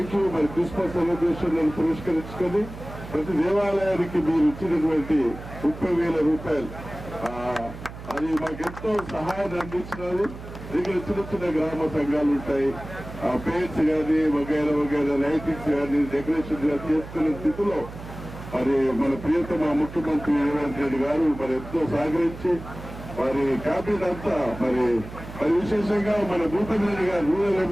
you. మరి క్రిస్మస్ సెలబ్రేషన్ పురస్కరించుకొని ప్రతి దేవాలయానికి మీరు ఇచ్చినటువంటి 30,000 రూపాయలు అది మాకెంతో సహాయాన్ని అందించినది. ఇక్కడ చిన్న చిన్న గ్రామ సంఘాలు ఉంటాయి, పేర్స్ కానీ వగైరా వగైరా లైటింగ్స్ కానీ డెకరేషన్ కానీ చేసుకునే స్థితిలో మరి మన ప్రియతమ ముఖ్యమంత్రి రేవంత్ రెడ్డి గారు మరి ఎంతో సహకరించి వారి క్యాబినెట్ అంతా మరి విశేషంగా మన భూపతి రెడ్డి గారు, రూరల్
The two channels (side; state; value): right; noise; hum, 13 dB below the sound